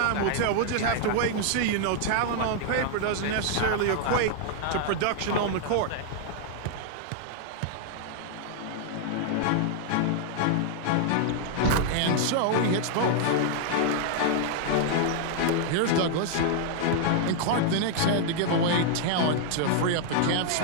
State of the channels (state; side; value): different; both; correlation 0.00